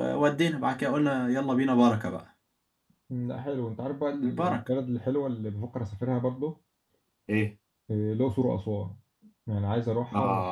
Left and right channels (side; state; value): both; identical; correlation 1.00